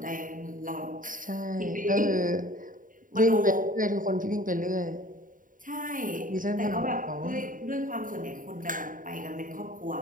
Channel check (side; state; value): left; late; 0.39 ms